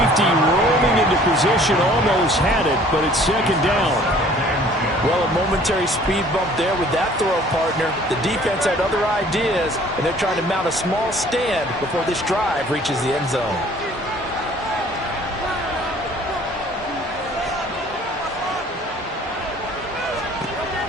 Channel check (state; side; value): normal; both; correlation 0.53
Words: rolling into position almost had it, but it's second down. Well, a momentary speed bump there with that throw, partner. The defense had other ideas, and they're trying to mount a small stand before this drive reaches the end zone.